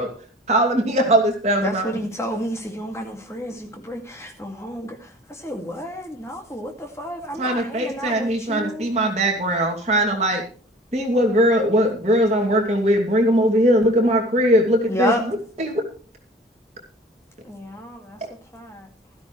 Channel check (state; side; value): normal; both; correlation 0.45